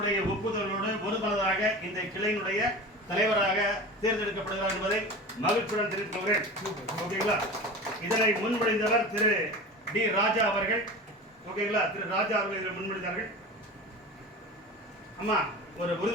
ஒப்புதலோடு ஒருமனதாக இந்த கிளையினுடைய தலைவராக தேர்ந்தெடுக்கப்படுகிறார் என்பதை மகிழ்ச்சியுடன் தெரிவித்துள்ளேன். ஓகேங்களா? இதனை முன்மொழிந்தவர் திரு டி ராஜா அவர்கள். ஓகேங்களா? திரு ராஜா அவர்கள் இதில் முன்மொழிந்தார்கள். அம்மா ஒரு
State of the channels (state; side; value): normal; both; correlation 0.32